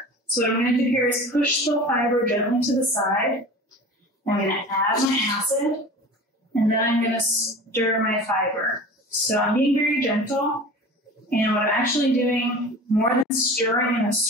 So what I'm going to do here is push the fiber gently to the side. I'm going to add my acid, and then I'm going to stir my fiber. So I'm being very gentle, and what I'm actually doing, more than stirring in a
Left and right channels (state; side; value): normal; both; correlation 0.37